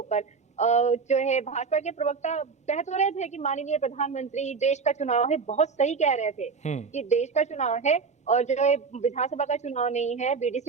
पर। जो है भाजपा के प्रवक्ता कह तो रहे थे कि माननीय प्रधानमंत्री देश का चुनाव है, बहुत सही कह रहे थे कि देश का चुनाव है और जो है विधानसभा का चुनाव नहीं है,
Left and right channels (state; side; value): quieter; left; 5.1 dB